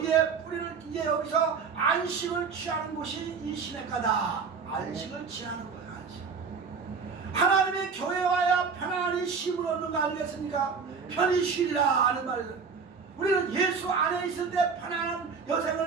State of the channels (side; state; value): left; quieter; 5.5 dB